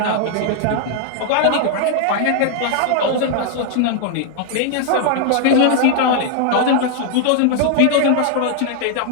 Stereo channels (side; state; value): both; different; correlation 0.00